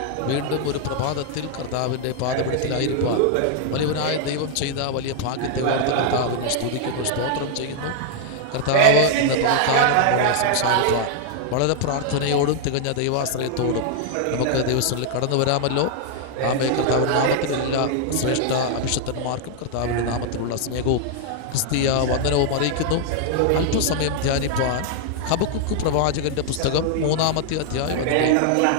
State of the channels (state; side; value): different; both; correlation 0.00